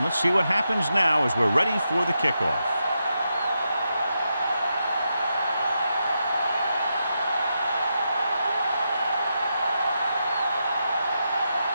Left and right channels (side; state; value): both; inverted; correlation -0.85